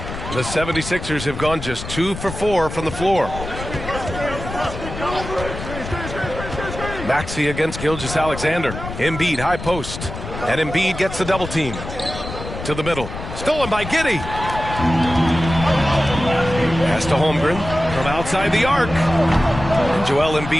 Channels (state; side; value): noise; left; rumble, 9 dB below the sound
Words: The 76ers have gone just 2 for 4 from the floor. Maxey against Gilgeous-Alexander. Embiid high post. And Embiid gets the double team. To the middle. Stolen by Giddey. Pass to Holmgren from outside the arc. Joel